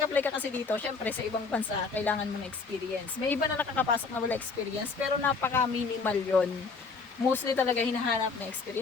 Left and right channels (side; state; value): right; quieter; 4.7 dB